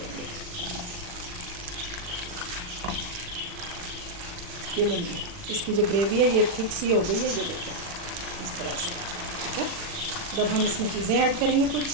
ये लेंगे, इसकी जो ग्रेवी है ये थिक सी हो गई है, ये देखिए इस तरह से। ठीक है, जब हम इसमें चीज़ें ऐड करेंगे कुछ,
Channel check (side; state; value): left; late; 40 ms